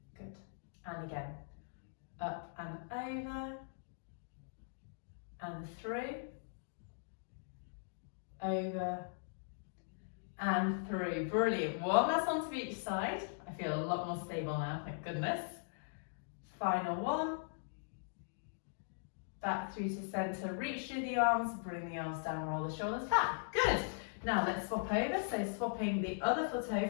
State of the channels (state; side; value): silent; right; digital silence